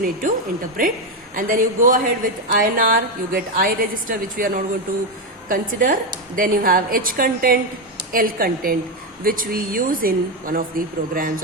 need to interpret. And then you go ahead with INR, you get I register, which we are not going to consider. Then you have H content, L content, which we use in one of the programs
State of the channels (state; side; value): normal; both; correlation 0.08